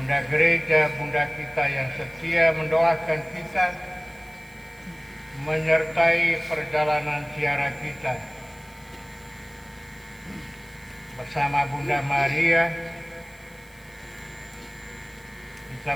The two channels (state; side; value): noise; right; hiss, 27 dB below the sound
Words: Gereja, Bunda kita yang setia mendoakan kita, menyertai perjalanan ziarah kita. Bersama Bunda Maria, kita